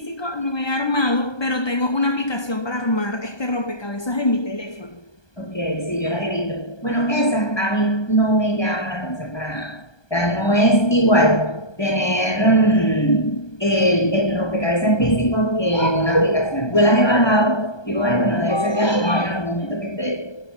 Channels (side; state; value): right; late; 1.2 ms